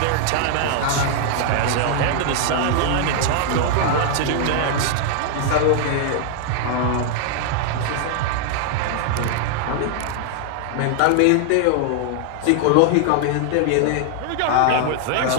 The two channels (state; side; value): different; both; correlation 0.00